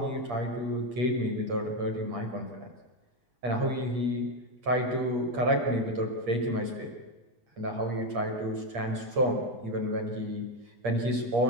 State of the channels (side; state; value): left; late; 8.5 ms